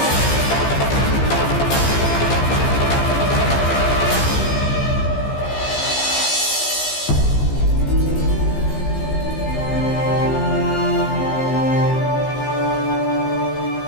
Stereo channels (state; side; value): late; right; 15 ms